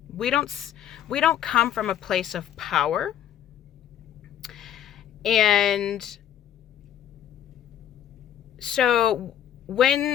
We don't come from a place of power. And so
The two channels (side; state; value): right; quieter; 10.4 dB